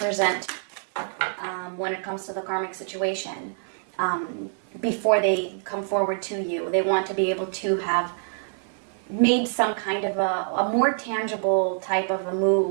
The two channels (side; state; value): left; silent; 61 dB below the other